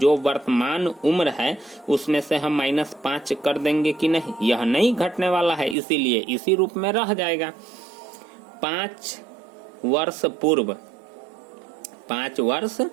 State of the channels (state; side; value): drops out; left; at 5.8 s